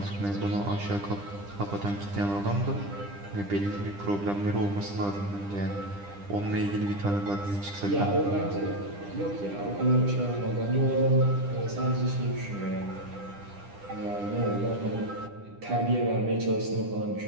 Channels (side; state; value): left; late; 10 ms